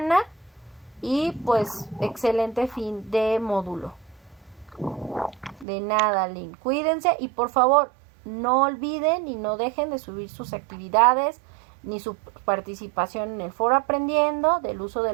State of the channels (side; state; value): left; drops out; at 5.7 s